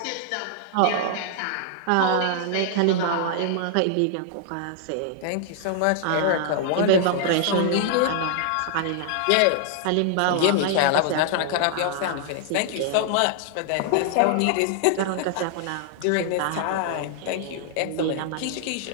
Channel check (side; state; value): both; different; correlation -0.01